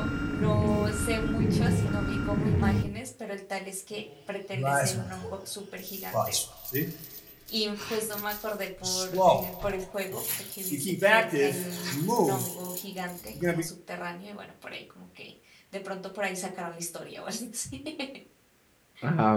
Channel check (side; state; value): both; identical; correlation 1.00